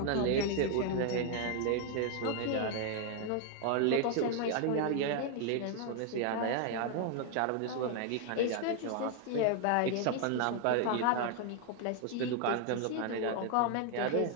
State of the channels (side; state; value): both; different; correlation 0.00